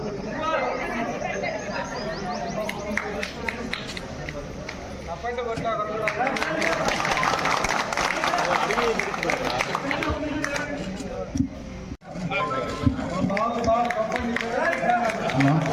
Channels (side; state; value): both; identical; correlation 1.00